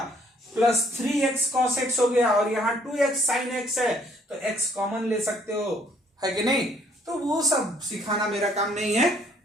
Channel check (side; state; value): both; normal; correlation 0.63